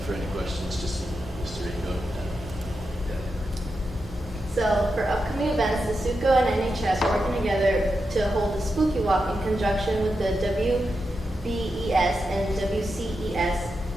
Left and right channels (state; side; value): normal; both; correlation 0.87